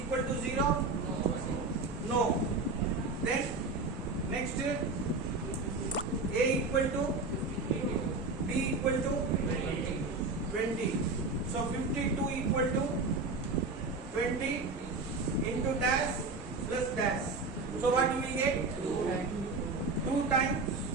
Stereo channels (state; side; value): quieter; left; 3.7 dB